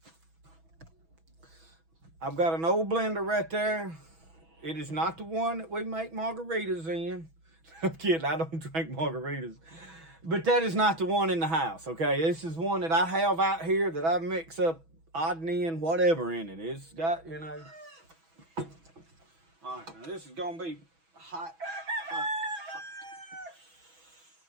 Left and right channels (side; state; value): left; late; 6.1 ms